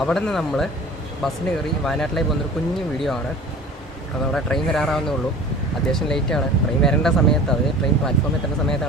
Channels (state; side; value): normal; both; correlation 0.42